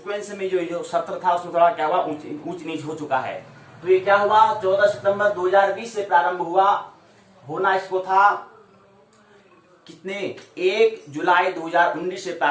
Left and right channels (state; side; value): identical; both; correlation 1.00